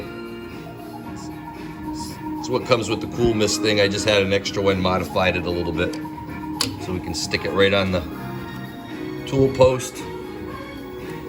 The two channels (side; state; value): both; identical; correlation 1.00